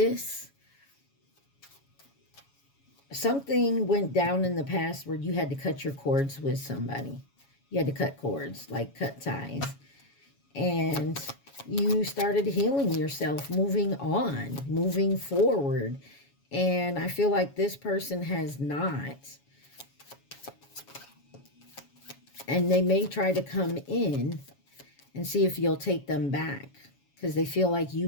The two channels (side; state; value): right; late; 7.2 ms